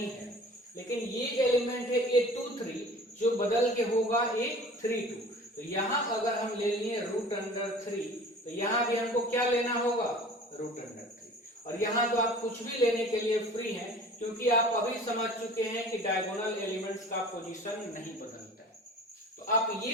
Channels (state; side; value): normal; both; correlation 0.44